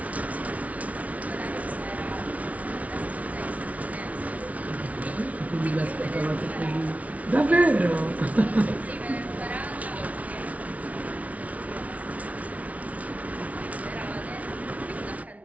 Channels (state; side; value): late; left; 0.068 ms